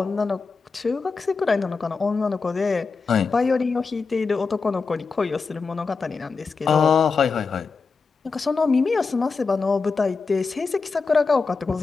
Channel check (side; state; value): right; quieter; 4.6 dB